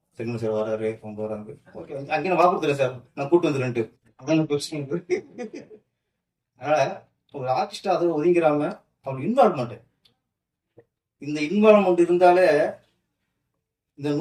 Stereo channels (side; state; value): both; identical; correlation 1.00